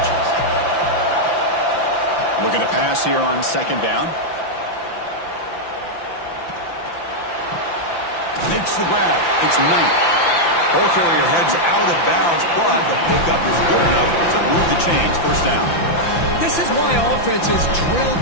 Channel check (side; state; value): right; late; 5.9 ms